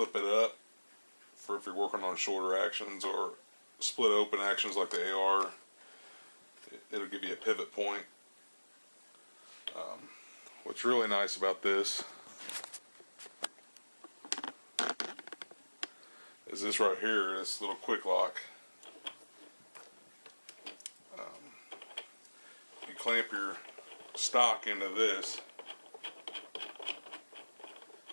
it up for if you're working on shorter actions or split open actions like the AR. It'll give you a pivot point. What's really nice about this is this right here, this little quick lock. You clamp your stock into this,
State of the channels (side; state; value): both; inverted; correlation -1.00